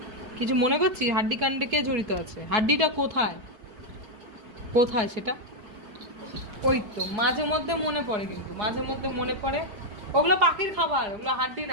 কিছু মনে করছিস? হাড্ডি কাণ্ডে কে জড়িত আছে? হাড্ডিটা কোথায়? কোথায় সেটা? ওই তো মাঝে মধ্যে মনে পড়ে, কিন্তু মাঝে মধ্যে মনে পড়ে। ওগুলো পাখির খাবার, ওগুলো হাড্ডি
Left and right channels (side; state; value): left; late; 4.7 ms